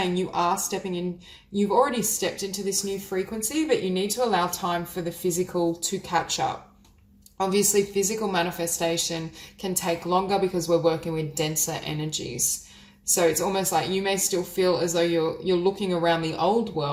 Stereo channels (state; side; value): identical; both; correlation 1.00